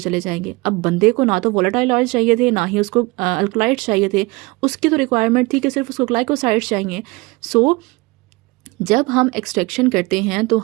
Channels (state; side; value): quieter; left; 23.7 dB